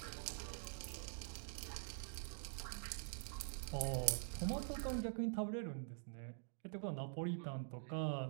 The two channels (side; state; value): left; silent; digital silence